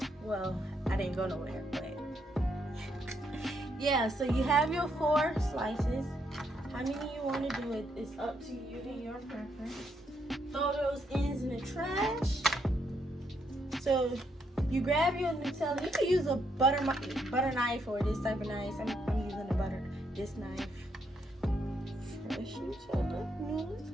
Well, I didn't go nowhere, but yeah, so you have your 4 slices. How many you want to do it is up to you and your preference. Throw those ends in the trash. So You grab your Nutella. You can use a butter knife or this type of knife. I'm using this knife. Fresh Nutella.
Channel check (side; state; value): both; normal; correlation 0.76